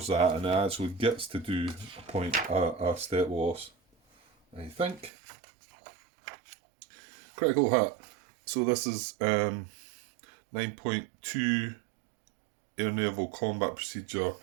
that and it actually gets to do a step loss, I think. Critical hit. So this is 9.2 air naval combat procedure,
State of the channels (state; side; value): drops out; left; at 5.1 s